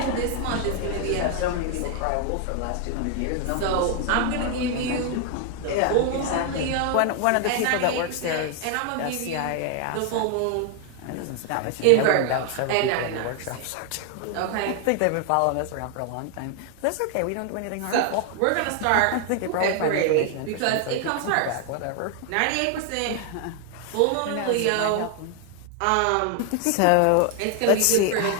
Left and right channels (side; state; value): both; different; correlation 0.00